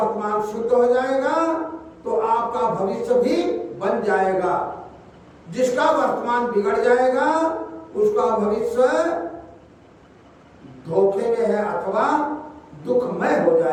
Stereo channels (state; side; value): identical; both; correlation 1.00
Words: शुद्ध हो जाएगा तो आपका भविष्य भी बन जाएगा। जिसका वर्तमान बिगड़ जाएगा उसका भविष्य धोखे में है अथवा दुखमय हो